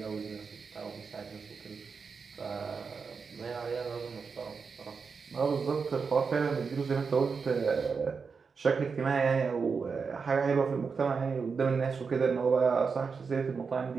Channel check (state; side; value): quieter; left; 5.3 dB